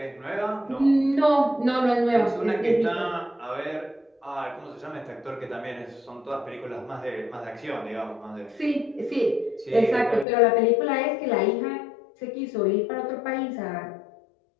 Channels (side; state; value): right; drops out; at 10.2 s